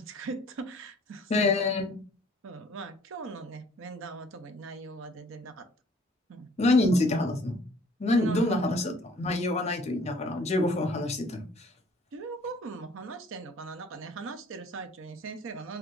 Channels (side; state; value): both; normal; correlation 0.56